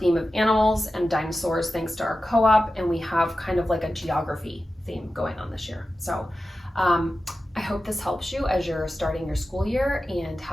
of animals and dinosaurs thanks to our co-op, and we have kind of like a geography theme going on this year. So I hope this helps you as you're starting your school year, and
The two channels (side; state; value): both; normal; correlation 0.93